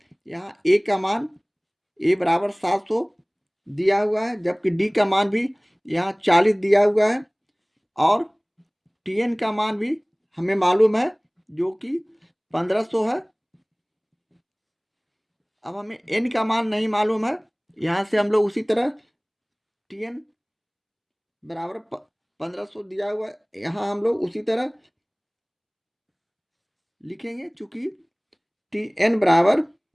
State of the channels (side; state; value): both; identical; correlation 1.00